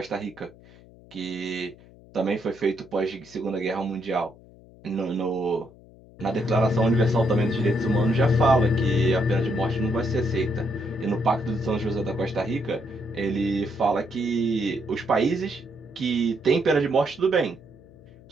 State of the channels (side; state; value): left; noise; hum, 23 dB below the sound